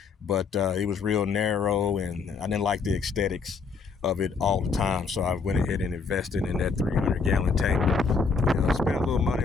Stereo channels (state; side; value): quieter; right; 4.9 dB